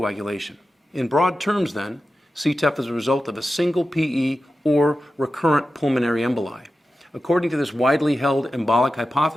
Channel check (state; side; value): normal; both; correlation 0.93